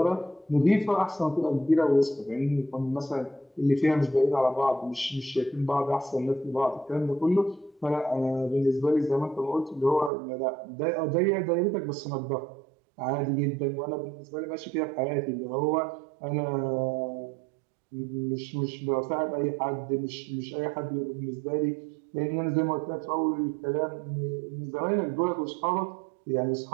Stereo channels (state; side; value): drops out; left; at 10.1 s